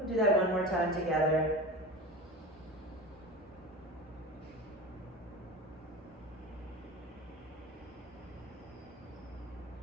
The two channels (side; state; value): both; normal; correlation 0.31